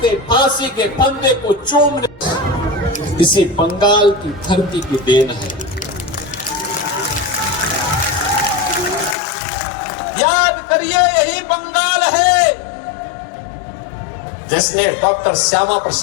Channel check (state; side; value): drops out; right; at 9.2 s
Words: फांसी के फंदे को चूमने इसी बंगाल की धरती की देन है। याद करिए, यही बंगाल है जिसने डॉक्टर श्यामा